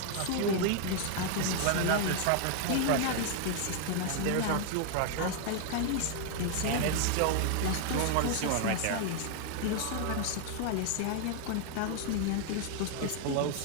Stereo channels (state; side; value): different; both; correlation 0.00